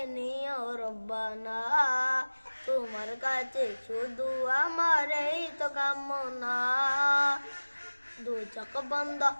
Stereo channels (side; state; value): both; inverted; correlation -1.00